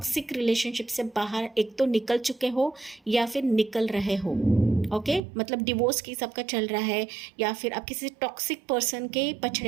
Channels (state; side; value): drops out; left; at 5.2 s